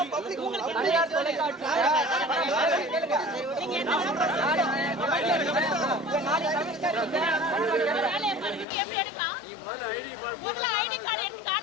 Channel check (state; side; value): drops out; right; at 8.7 s